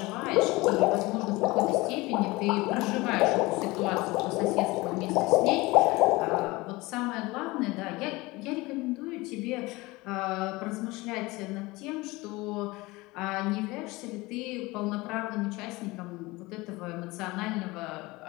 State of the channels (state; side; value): quieter; right; 22.0 dB